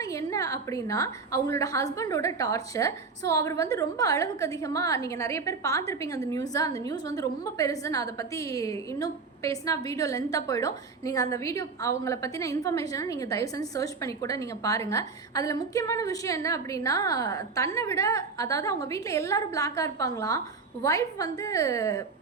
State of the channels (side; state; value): left; quieter; 4.6 dB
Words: என்ன அப்படின்னா அவங்களோட ஹஸ்பண்டோட டார்ச்சர். ஸோ அவர் வந்து ரொம்ப அளவுக்கு அதிகமாக, நீங்கள் நிறைய பேர் பார்த்துருப்பீங்க அந்த நியூஸ் வந்து ரொம்ப பெருசு. நான் அதை பற்றி இன்னும் பேசினா வீடியோ லென்த்தாக போயிடும். நீங்கள் அந்த வீடியோ அவங்கள பற்றின இன்ஃபர்மேஷனை நீங்கள் தயவு செஞ்சு சர்ச் பண்ணி கூட நீங்கள் பாருங்கள். அதில் முக்கியமான விஷயம் என்ன அப்படின்னா, தன்னை விட, அதாவது அவங்க வீட்டில் எல்லாரும் பிளாக்காக இருப்பாங்களாம், ஒய்ஃப் வந்து